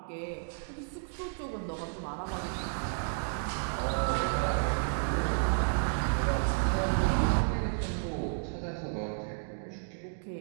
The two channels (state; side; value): silent; left; digital silence